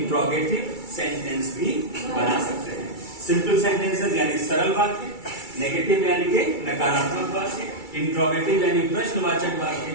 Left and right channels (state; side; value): late; right; 2.3 ms